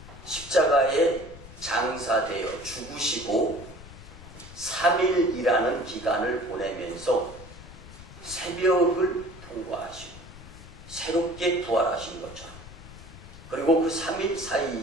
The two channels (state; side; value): noise; left; rumble, 16 dB below the sound